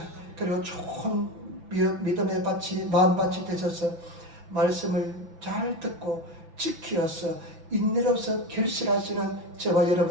그리고 좋은 믿음의 밭이, 마음밭이 되셔서 말씀을 잘 듣고 지키어서 인내로서 결실하시는 저와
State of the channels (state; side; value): late; left; 6.0 ms